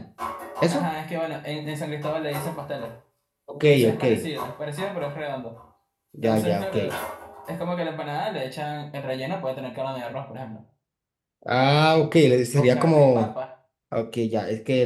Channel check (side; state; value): both; identical; correlation 1.00